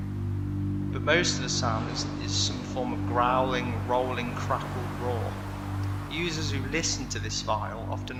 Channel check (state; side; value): identical; both; correlation 1.00